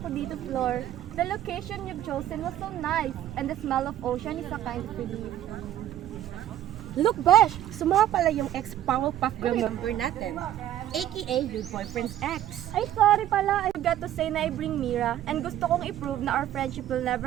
dito, Flor. The location you've chosen was so nice, and the smell of ocean is a kind of relief. Look, Besh! Sumama pala yung ex-Powerpuff Girl member natin. AKA your boyfriend's ex. Ay, sorry pala. I forgot to say na I bring Mira, and gusto kong i-prove na our friendship will never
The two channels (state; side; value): quieter; left; 12.3 dB